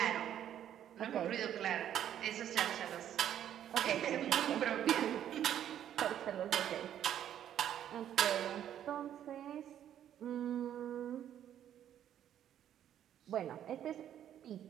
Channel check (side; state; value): left; quieter; 10.5 dB